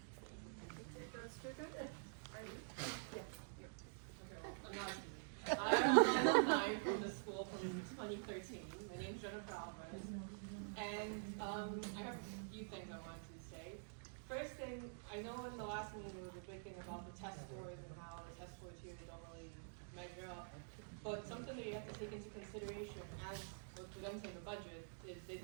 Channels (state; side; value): silent; left; digital silence